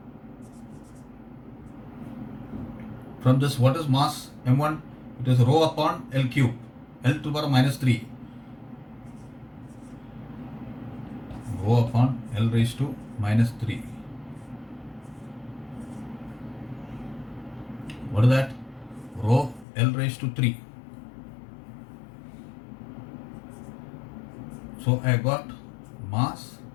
From this, what is mass? m1, it is rho upon L cube, L to the power of minus 3. Rho upon L raised to minus 3. What is that? Rho L raised to 3. So I got mass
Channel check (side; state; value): right; drops out; at 19.7 s